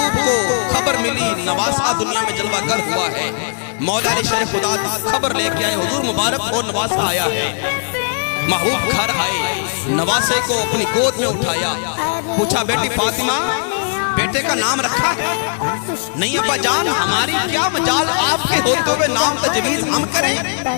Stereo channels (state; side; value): silent; right; digital silence